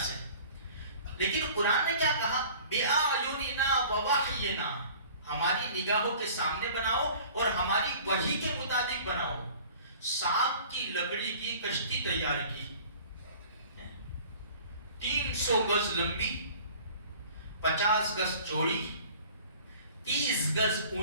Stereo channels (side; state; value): both; inverted; correlation -0.47